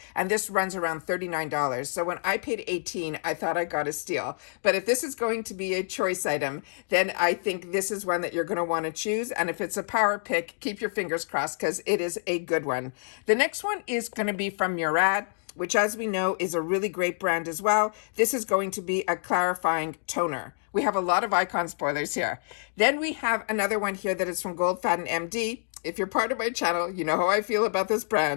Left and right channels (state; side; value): silent; right; digital silence